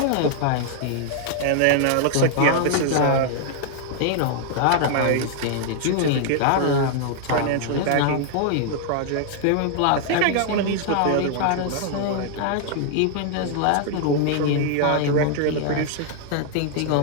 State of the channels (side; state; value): both; different; correlation -0.01